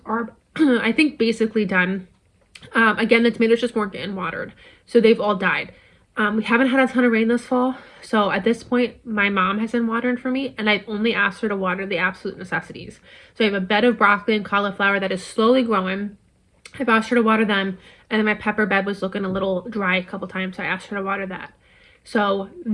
are, I think, basically done. Again, the tomatoes just weren't getting watered, so they've all died. We haven't had a ton of rain this fall, so at this point, my mom has been watering for me, and I've only asked her to water the absolute necessities. So I have a bed of broccoli and cauliflower that is slowly growing. I've asked her to water them, and then my pepper bed was looking a little dry a couple times, so I asked her to water that. So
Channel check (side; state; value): both; identical; correlation 1.00